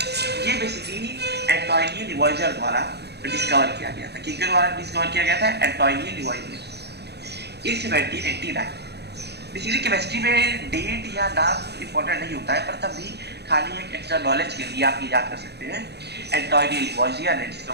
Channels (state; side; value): late; left; 0.48 ms